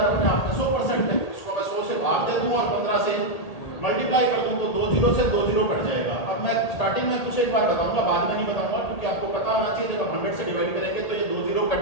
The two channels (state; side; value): late; right; 1.8 ms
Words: अपने आप में 100% है, इसको मैं 100 से भाग दे दूं और 15 से मल्टीप्लाई कर दूं तो 2 0 से 2 0 कट जाएगा। अब मैं स्टार्टिंग में कुछ एक बार बताऊंगा, बाद में नहीं बताऊंगा, क्योंकि आपको पता होना चाहिए जब 100 से डिवाइड करेंगे तो ये 2 0